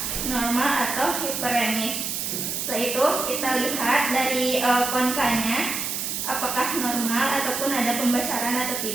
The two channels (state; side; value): noise; right; hiss, 2 dB below the sound